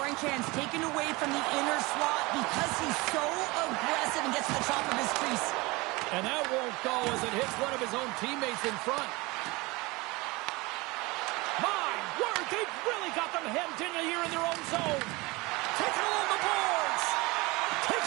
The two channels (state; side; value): quieter; left; 23.6 dB